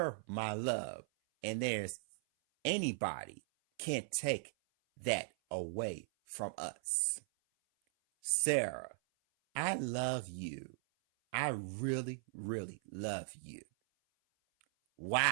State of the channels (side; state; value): left; silent; 52 dB below the other